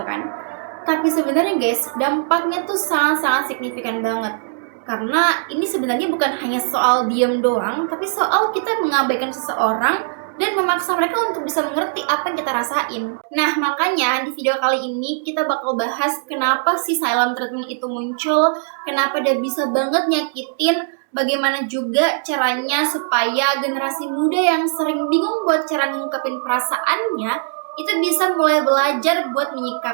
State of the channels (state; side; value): silent; left; digital silence